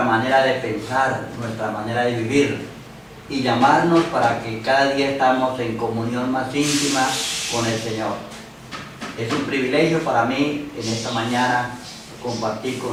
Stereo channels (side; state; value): both; identical; correlation 1.00